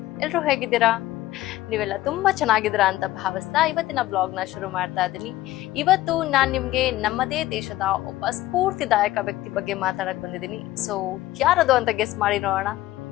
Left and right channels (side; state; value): right; quieter; 16.0 dB